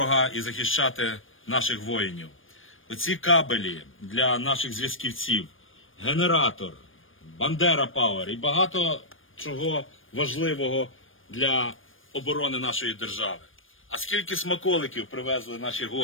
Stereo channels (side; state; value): right; late; 0.59 ms